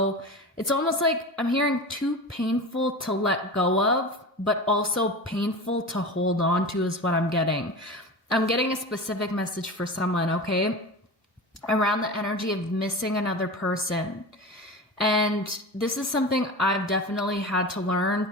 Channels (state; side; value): normal; both; correlation 0.29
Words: It's almost like I'm hearing too painful to let go of, but also painful to hold on to is what I'm getting. I'm getting a specific message for someone, okay? Around the energy of missing another person. And this is something I've definitely had to learn